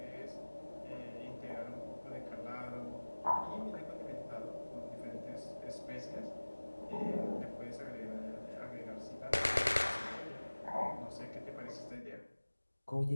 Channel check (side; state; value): both; inverted; correlation -1.00